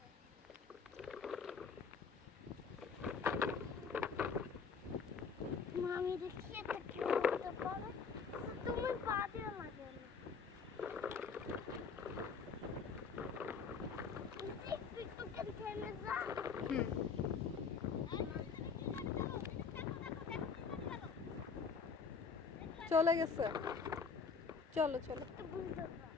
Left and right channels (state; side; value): quieter; right; 5.5 dB